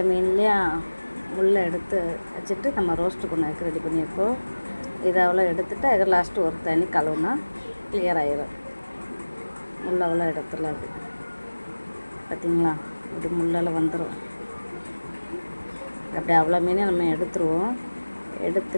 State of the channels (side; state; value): both; inverted; correlation -1.00